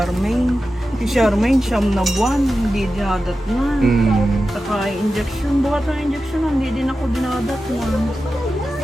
Si Charmaine, siyam na buwan, hindi dinadat na. Saka injection, bukat ng injection, hindi din ako dinadat na.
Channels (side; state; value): both; normal; correlation 0.92